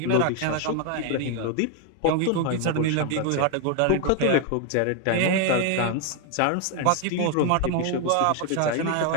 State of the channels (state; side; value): different; both; correlation 0.01